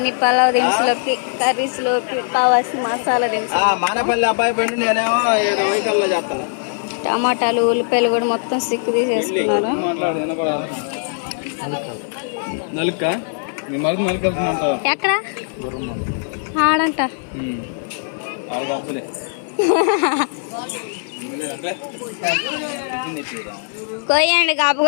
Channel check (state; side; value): silent; right; 66 dB below the other